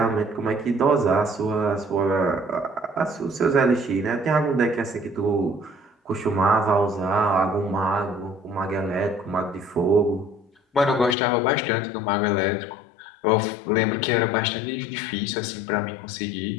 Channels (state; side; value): drops out; right; at 11.2 s